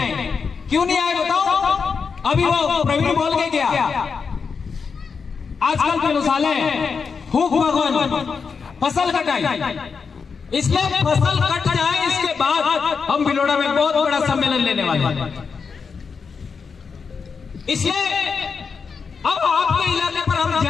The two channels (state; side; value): quieter; right; 5.5 dB